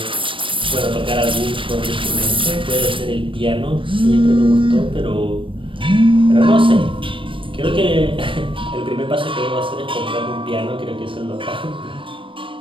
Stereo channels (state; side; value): late; left; 0.25 ms